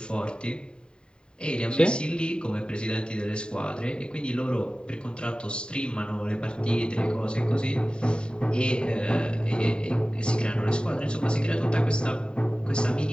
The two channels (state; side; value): late; right; 0.050 ms